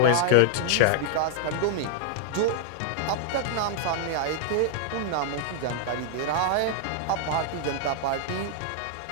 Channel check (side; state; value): both; different; correlation -0.01